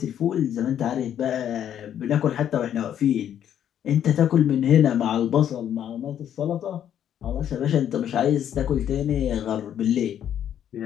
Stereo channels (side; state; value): right; quieter; 10.0 dB